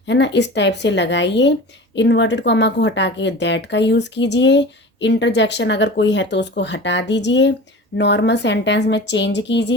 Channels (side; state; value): both; normal; correlation 0.36